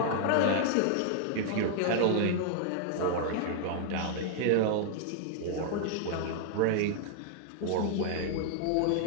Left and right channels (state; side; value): different; both; correlation -0.01